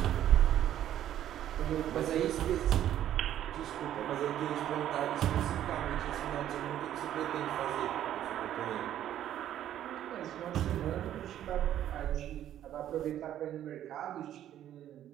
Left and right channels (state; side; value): quieter; left; 11.5 dB